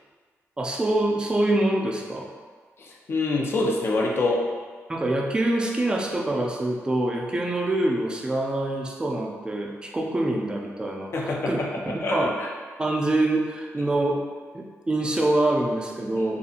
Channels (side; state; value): both; normal; correlation 0.85